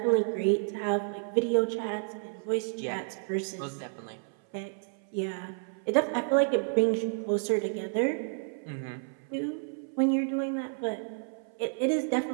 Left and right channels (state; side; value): silent; left; 57 dB below the other